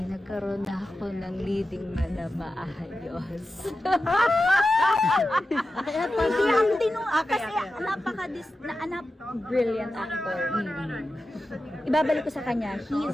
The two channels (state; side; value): normal; both; correlation 0.92